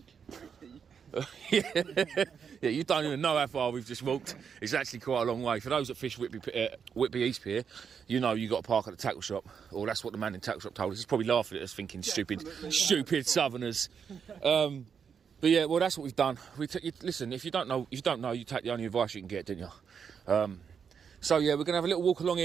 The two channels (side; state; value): left; quieter; 6.9 dB